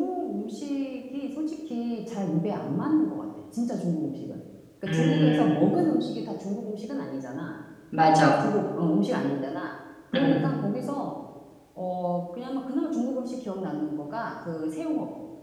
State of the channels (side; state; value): both; identical; correlation 1.00